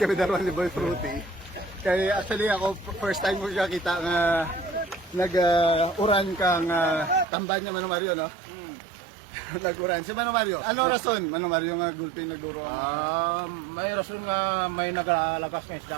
daruan ni Boy Fruity. Kaya actually ako, first time ko siya kita nga nag-uran kang tamban niya Mano Mario, no? Nag-uran. Si Mano Mario, ano rason? Mano Mario nga gulping nagduro? May rason nga may nagalagas ng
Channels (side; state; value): left; drops out; at 7.2 s